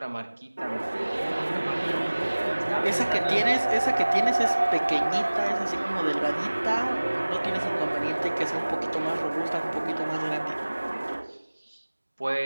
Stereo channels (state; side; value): inverted; both; correlation -1.00